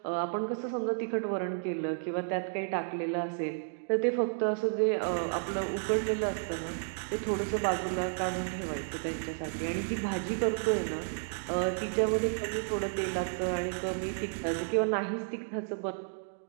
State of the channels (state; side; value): silent; left; digital silence